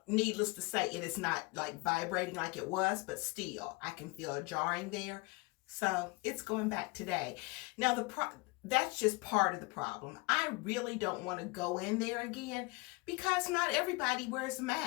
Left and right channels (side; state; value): right; quieter; 26.0 dB